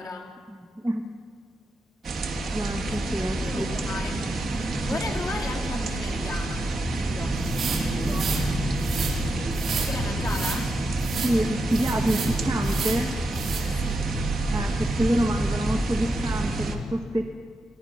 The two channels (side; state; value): both; normal; correlation 0.86